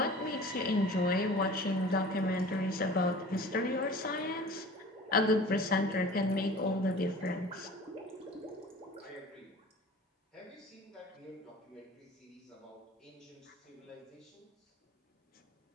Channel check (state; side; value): normal; both; correlation 0.42